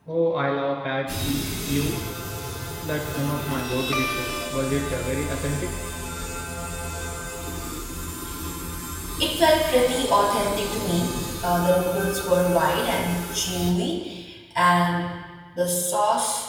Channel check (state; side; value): identical; both; correlation 1.00